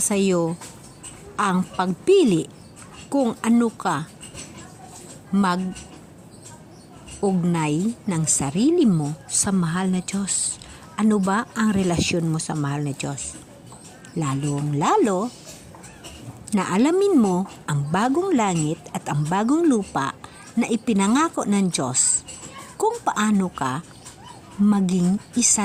ang pagpili kung ano ka ugnay ng sarili mo sa mahal na Diyos. Ano ba ang relasyon mo sa mahal na Diyos? Lalong-lalo na alamin mo ang bagong langit at ang bagong lupa na ipinangako ng Diyos kung paano ka maging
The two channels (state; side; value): identical; both; correlation 1.00